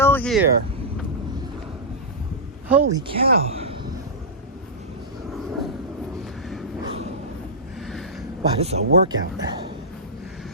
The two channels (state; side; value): normal; both; correlation -0.14